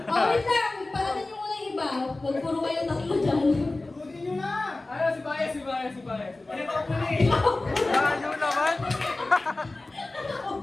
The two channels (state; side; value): quieter; right; 3.0 dB